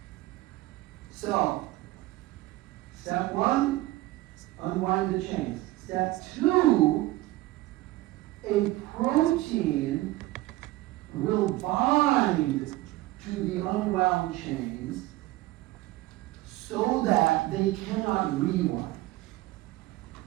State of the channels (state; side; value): quieter; left; 18.1 dB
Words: So, step one, unwind the chains. Step two, a protein will bind to the unwound chains so that they cannot rewind.